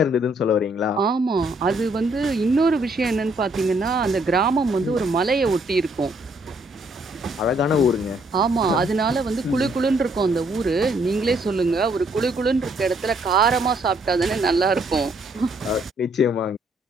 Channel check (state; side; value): normal; both; correlation 0.68